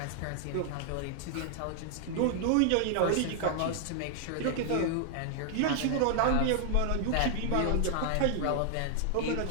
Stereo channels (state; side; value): different; both; correlation 0.00